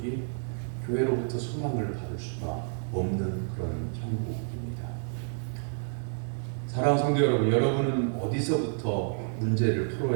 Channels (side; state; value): left; silent; 58 dB below the other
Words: 교회로부터 소망을 받을 수가 없는 그런 형국입니다. 사랑하는 성도 여러분, 여러분은 어디서부터 문제를